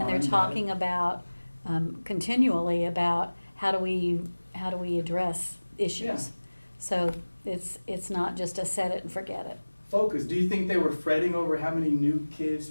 Monitoring data. talking about, continually about how do we address issues. Yeah. So it's not just a set it and forget it. Focus. Do you think they were fretting over how many new kids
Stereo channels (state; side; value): inverted; both; correlation -1.00